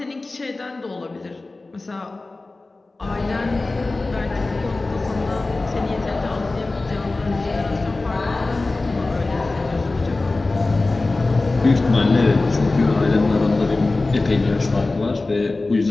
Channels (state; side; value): quieter; right; 3.3 dB